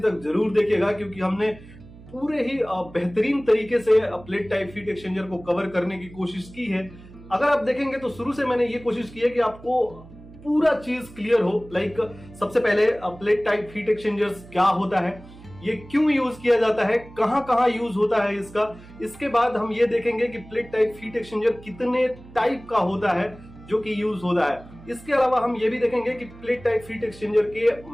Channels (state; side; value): noise; right; hum, 19 dB below the sound